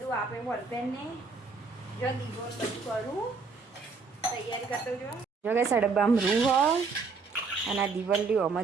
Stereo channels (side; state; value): left; quieter; 4.5 dB